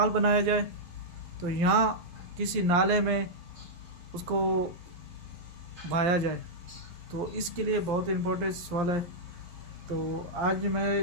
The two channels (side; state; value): left; late; 12 ms